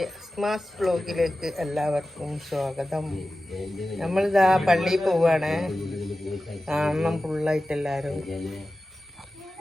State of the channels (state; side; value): normal; both; correlation 0.95